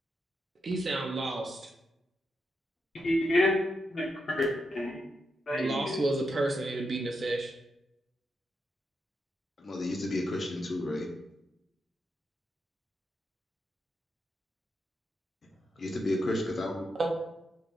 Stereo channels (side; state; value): both; normal; correlation 0.84